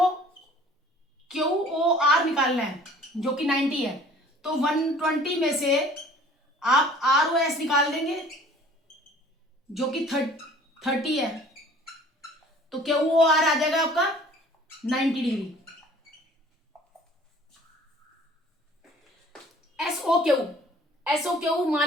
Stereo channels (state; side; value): normal; both; correlation 0.51